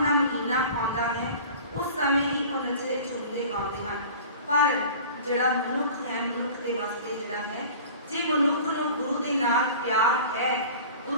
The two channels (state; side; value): inverted; both; correlation -0.41